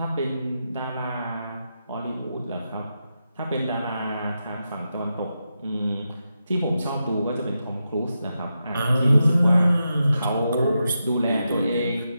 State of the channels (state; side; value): inverted; both; correlation -0.87